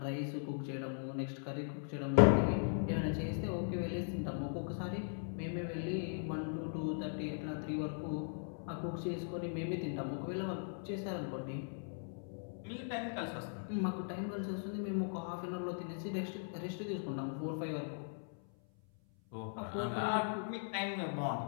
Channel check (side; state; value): right; silent; 52 dB below the other